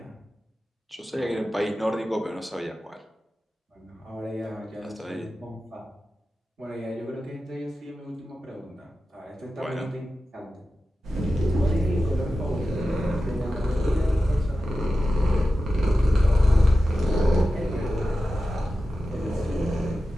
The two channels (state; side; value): normal; both; correlation 0.93